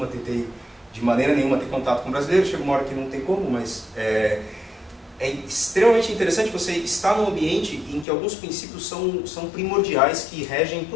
tentei de maneira nenhuma ter contato com brasileiro, chega uma hora que não tem como, mas é extremamente interessante você estar num ambiente em que alguns princípios são primordiais que regem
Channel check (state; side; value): drops out; right; at 8.1 s